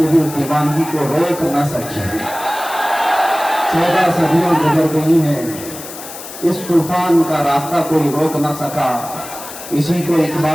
بھی اس دیوانگی کو روک نہ سکی۔ 14 صدیاں گزر گئی ہیں، اس طوفان کا راستہ کوئی روک نہ سکا۔ اسی کو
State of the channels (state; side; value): noise; left; hiss, 13 dB below the sound